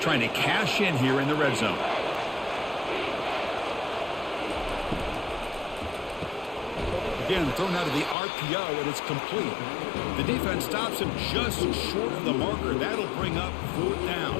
to cash in here in the red zone. Again, thrown out of the RPO, and it's complete. The defense stops him just short of the marker. That'll bring up 4th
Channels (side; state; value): right; drops out; at 8.2 s